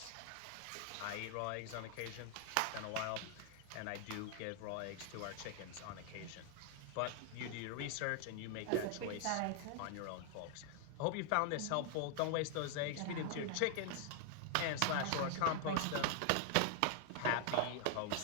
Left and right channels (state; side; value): different; both; correlation 0.00